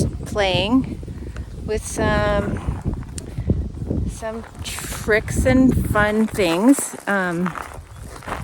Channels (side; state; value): both; identical; correlation 1.00